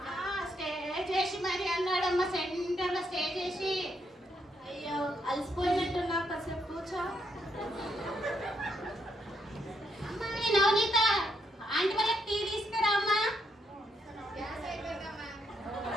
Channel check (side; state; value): both; normal; correlation 0.77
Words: స్టేజ్ వేసి మరి అన్నాడమ్మా, సెంటర్లో స్టేజ్ వేసి. అయ్యో, అలసిపోయినట్టున్నా, కాసేపు కూర్చో. అమ్మా, నవనీత ఆంటీ వాళ్ళకి టీ తీసుకురా అమ్మా.